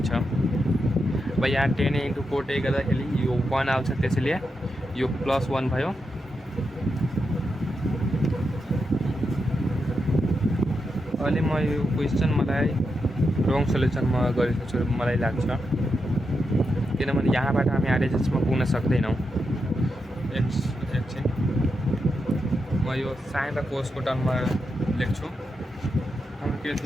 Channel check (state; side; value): normal; both; correlation 0.86